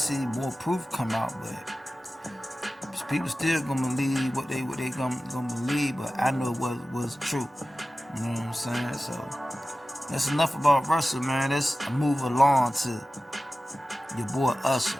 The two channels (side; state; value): both; normal; correlation 0.95